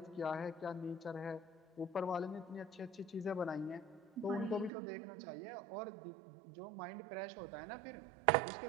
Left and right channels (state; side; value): drops out; left; at 4.7 s